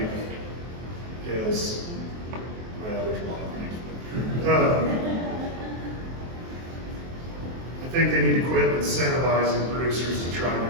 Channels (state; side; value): late; left; 23 ms